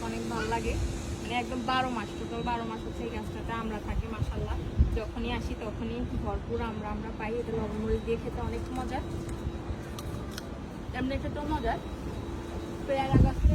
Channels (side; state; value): both; identical; correlation 1.00